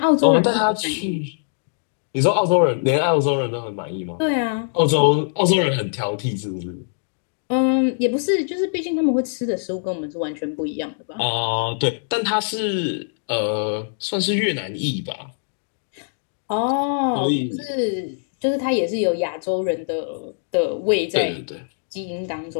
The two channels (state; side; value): silent; right; digital silence